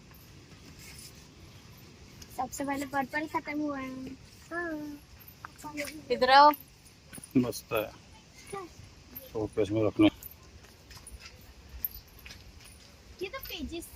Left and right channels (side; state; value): both; identical; correlation 1.00